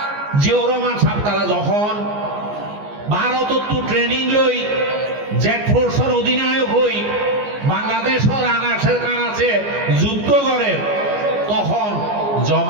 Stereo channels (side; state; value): left; late; 14 ms